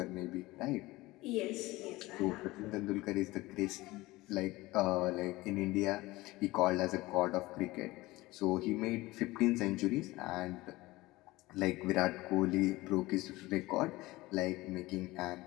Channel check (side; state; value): right; quieter; 19.8 dB